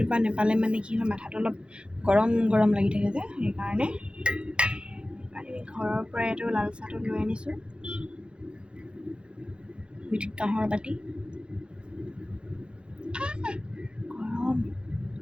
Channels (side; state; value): left; late; 0.056 ms